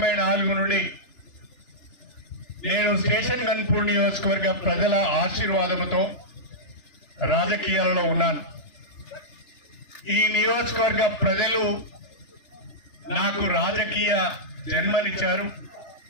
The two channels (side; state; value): right; late; 3.3 ms